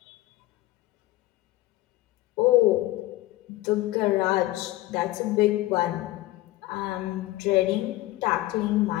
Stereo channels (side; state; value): right; quieter; 17.3 dB